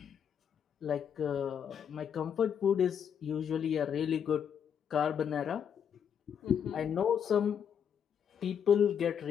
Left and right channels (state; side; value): quieter; right; 8.0 dB